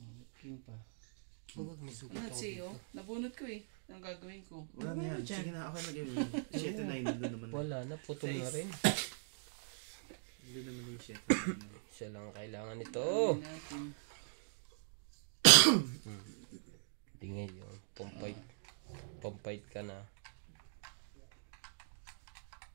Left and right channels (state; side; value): silent; left; digital silence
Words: King pa. Huwag may sugat Ano ako siya, dito. nabunot ko eh. Ang gagawin ko. Wala na yan. Sige na, okay na gawin. 7 na yun naman. Wala na, putol na rin. Hindi naman yung 7. Isa lang kailangan nito. Gawin natin. Hindi ngayon. Pampait ka na.